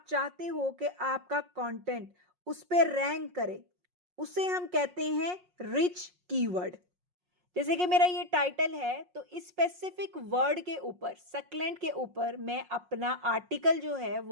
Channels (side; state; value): left; late; 5.5 ms